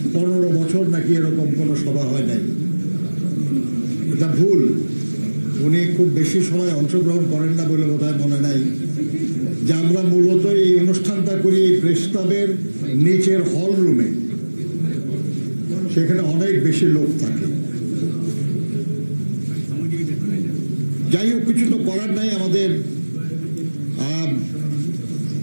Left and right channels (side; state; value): both; inverted; correlation -1.00